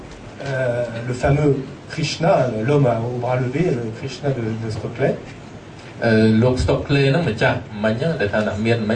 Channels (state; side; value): identical; both; correlation 1.00